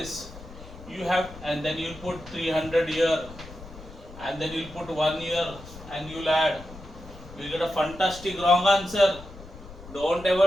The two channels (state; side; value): noise; left; rumble, 16 dB below the sound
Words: You have, and then you'll put 300 here, and then you'll put 1 here, and you'll add. You get a fantastic wrong answer. Don't